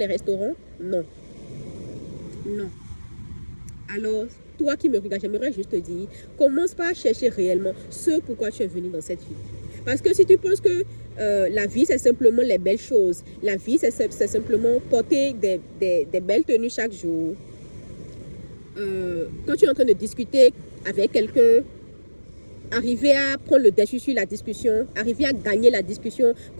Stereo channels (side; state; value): both; inverted; correlation -1.00